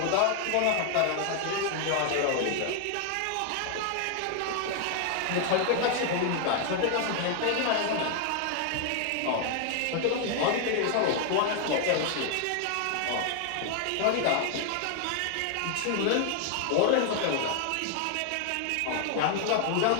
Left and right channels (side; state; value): both; different; correlation 0.00